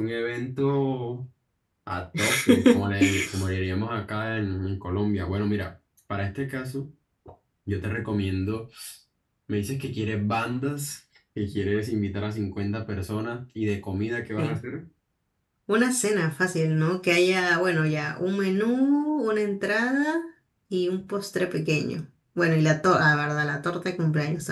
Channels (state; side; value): identical; both; correlation 1.00